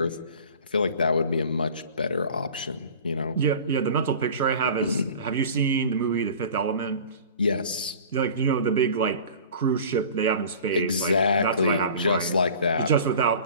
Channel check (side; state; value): both; inverted; correlation -0.41